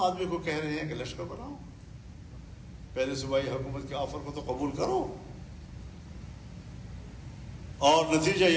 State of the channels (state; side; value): identical; both; correlation 1.00